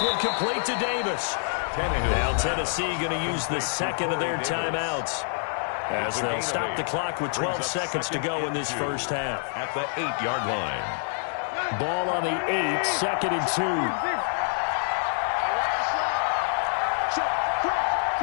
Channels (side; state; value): right; silent; digital silence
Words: one complete to Davis. Now Tennessee going to use the 2nd of their timeouts as they'll stop the clock with 12 seconds to go in this first half. At the 8-yard line. Ball on the 8, 2nd and 2.